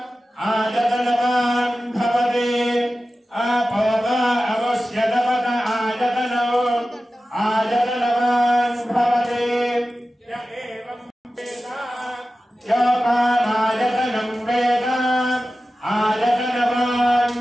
आजकनवान् भवति आपो वा अवश्यतपत आजकनो आजकनवान् भवति य एवं वेद योपामाजकनं वेद आजकनवान्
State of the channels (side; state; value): both; normal; correlation 0.95